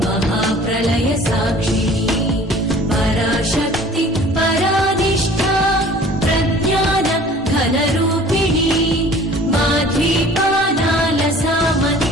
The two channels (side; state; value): both; normal; correlation 0.48